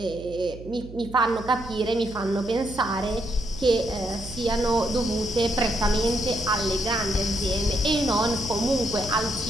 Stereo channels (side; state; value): right; noise; hum, 15 dB below the sound